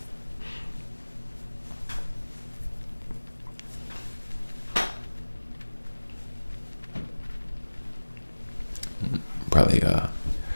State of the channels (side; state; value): both; inverted; correlation -1.00